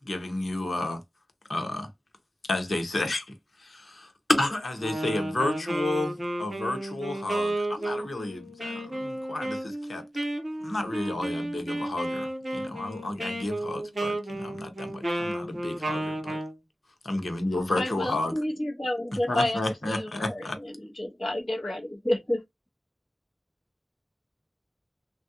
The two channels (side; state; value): both; normal; correlation 0.94